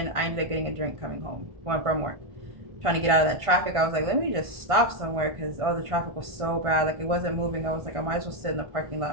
I ended up getting a drink coming home, going from work. Trying to get out of that traffic, I was like, let me just stop somewhere because the traffic was so bad. Like, it wasn't moving. I was like, I might as well sit in the parking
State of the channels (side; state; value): left; late; 1.5 ms